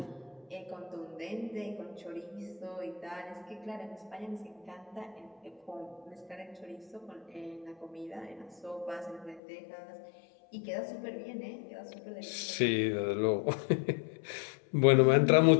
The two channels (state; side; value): drops out; right; at 9.4 s